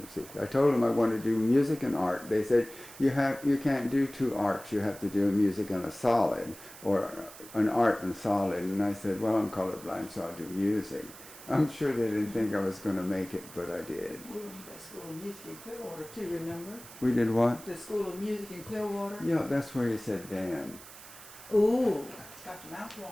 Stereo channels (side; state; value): right; noise; hiss, 17 dB below the sound